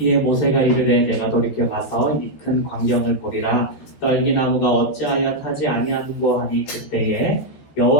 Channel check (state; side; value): late; right; 14 ms